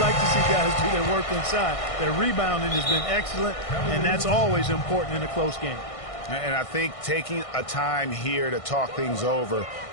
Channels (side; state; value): right; late; 1.6 ms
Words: like to see guys do their work inside. Their rebounding has been excellent, and that's always important in a close game. And I think taking a time here to talk things over